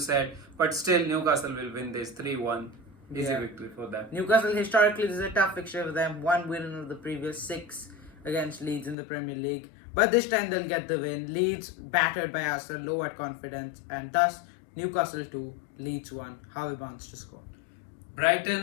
But still, Newcastle will win this 3-1. Easy victory for them. Newcastle historically, this is a tough fixture for them. 1 win of the previous 6 against Leeds in the Premier League. But this time they'll get the win. Leeds battered by Arsenal, low at confidence, and thus Newcastle 2, Leeds 1. Harvey Barnes to score.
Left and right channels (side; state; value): right; drops out; at 9.0 s